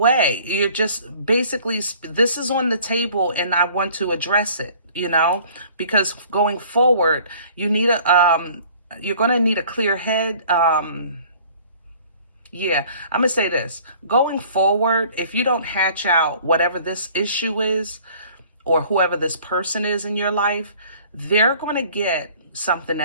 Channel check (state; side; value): inverted; both; correlation -0.52